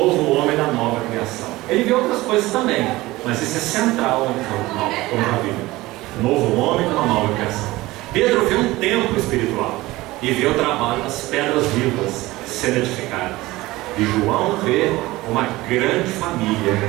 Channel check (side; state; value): left; quieter; 19.1 dB